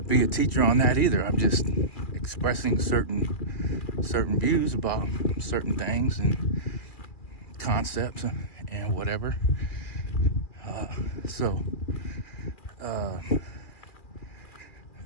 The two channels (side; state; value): right; late; 2.4 ms